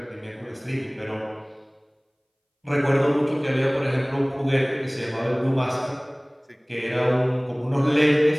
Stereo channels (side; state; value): both; identical; correlation 1.00